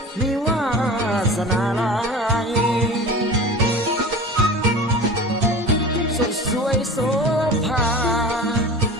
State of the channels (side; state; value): both; normal; correlation 0.36